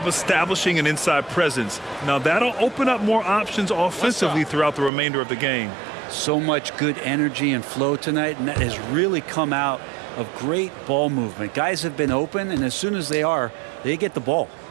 establishing an inside presence. Now that'll open up more options offensively throughout the remainder of the game. So much good energy and flow tonight, and that has really come out of great ball movement. Guys have been open, and as soon as they are, they get the ball.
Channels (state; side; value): drops out; left; at 4.9 s